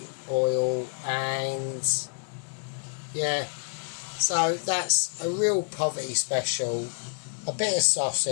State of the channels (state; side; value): silent; right; 59 dB below the other